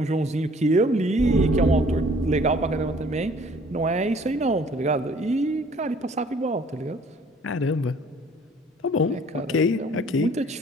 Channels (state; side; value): normal; both; correlation 0.56